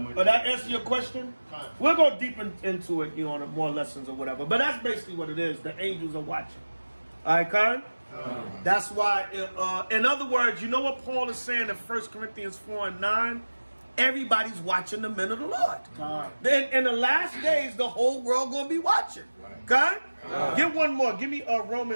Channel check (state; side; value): inverted; both; correlation -1.00